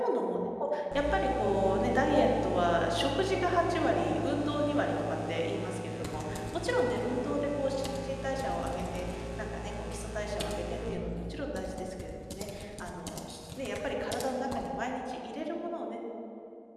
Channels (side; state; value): both; identical; correlation 1.00